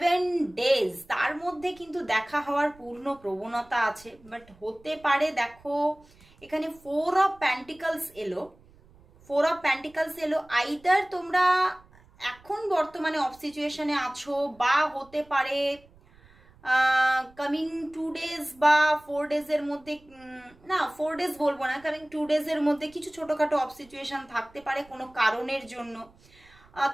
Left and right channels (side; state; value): right; noise; rumble, 27 dB below the sound